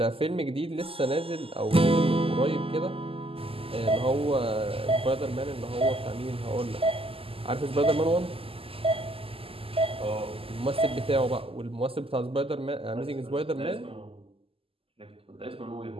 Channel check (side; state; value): left; late; 0.27 ms